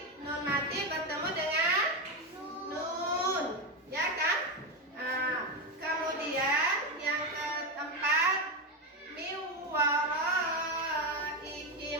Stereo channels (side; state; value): both; normal; correlation 0.12